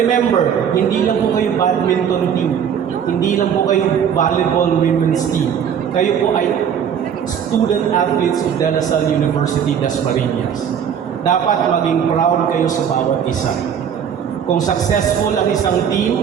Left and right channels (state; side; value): quieter; left; 8.2 dB